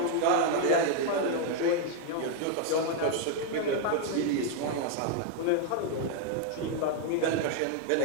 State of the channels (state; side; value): different; both; correlation 0.00